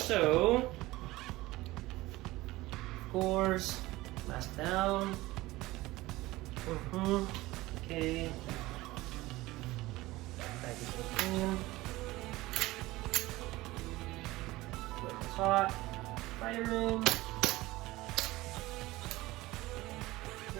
of course, mask down. Okay. Packaging in. It's hot. Firing.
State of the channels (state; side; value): quieter; left; 19.0 dB